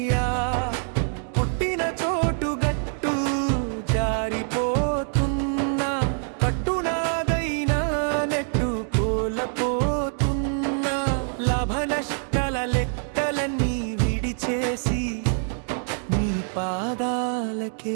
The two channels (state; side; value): silent; left; 59 dB below the other